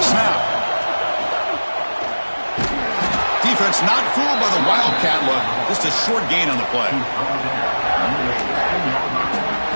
snap. Defense not fooled by the wildcat look. Just a short gain on the play.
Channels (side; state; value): both; inverted; correlation -1.00